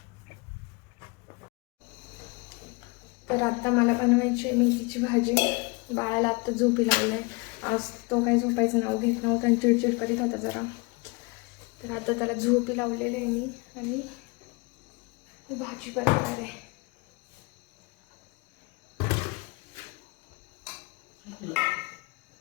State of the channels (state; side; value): quieter; right; 27.6 dB